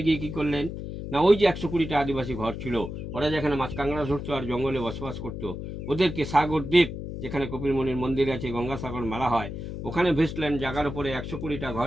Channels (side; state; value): left; noise; hum, 7 dB below the sound